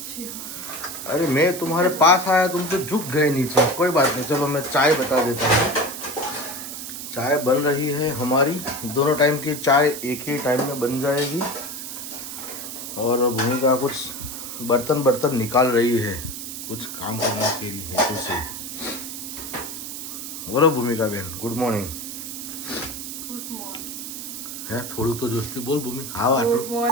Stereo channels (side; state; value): right; noise; hiss, 8 dB below the sound